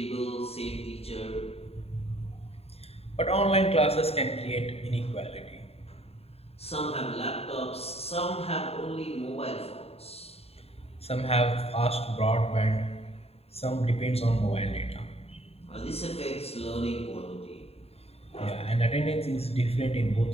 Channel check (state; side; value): late; right; 0.29 ms